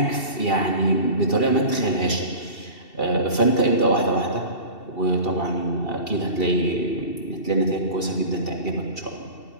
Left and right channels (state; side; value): late; right; 2.7 ms